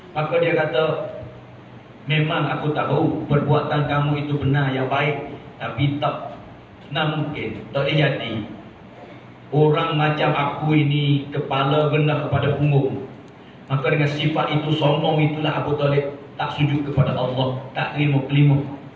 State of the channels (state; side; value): identical; both; correlation 1.00